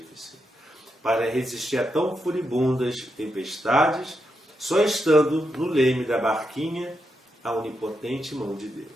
para resistir a tão furibundas tempestades, só estando no leme da barquinha a onipotente mão de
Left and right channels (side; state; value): both; normal; correlation 0.84